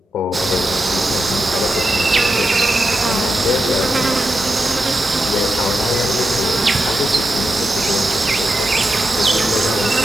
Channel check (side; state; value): both; normal; correlation 0.88